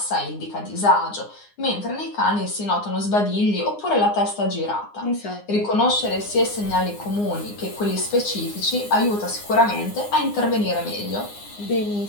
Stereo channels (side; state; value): right; late; 9.7 ms